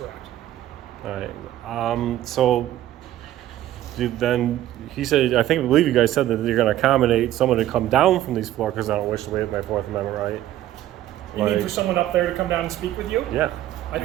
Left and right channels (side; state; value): left; quieter; 13.4 dB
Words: All right. Then he said, I believe you guys said that you're going to accommodate someone to come down from these floors because I don't wish to waive my Fourth Amendment right. You need for someone up there to come down and speak with you? Yeah. I